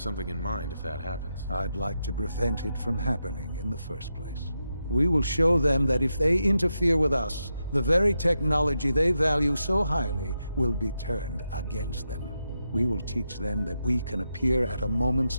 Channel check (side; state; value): both; inverted; correlation -0.86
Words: in mind if that happens. I'd like to prevent it from happening in the first place. We will show them that if they interfere with us, the very technology they value so highly will be turned against them. We will teach them that we can appear at a